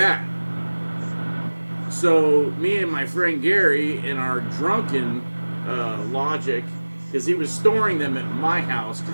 So me and my friend Gary, in our drunken logic, because he was storing them at my house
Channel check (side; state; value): both; inverted; correlation -1.00